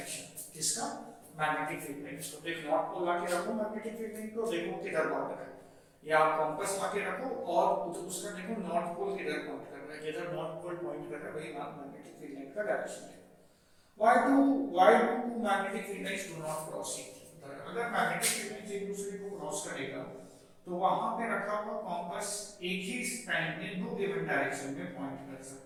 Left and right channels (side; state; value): both; identical; correlation 1.00